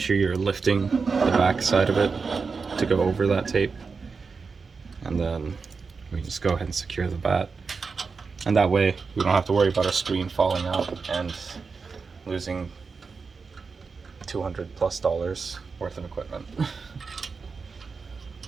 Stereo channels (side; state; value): left; quieter; 4.9 dB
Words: you're lifting the back side of it to go over that tape, and then we just go ahead and secure the vat, and that way we don't have to worry about our screen falling out and losing $200+ worth of equipment.